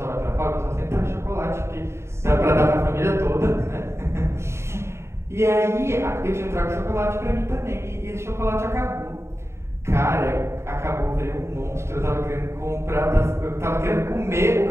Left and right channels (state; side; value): late; left; 0.13 ms